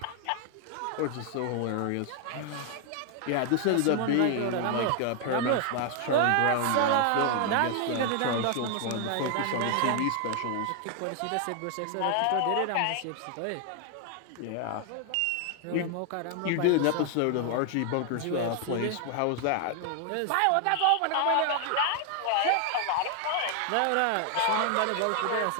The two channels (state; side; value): different; both; correlation 0.00